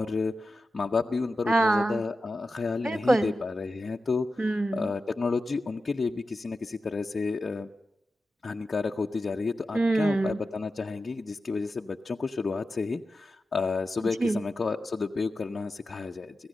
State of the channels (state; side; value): normal; both; correlation 0.92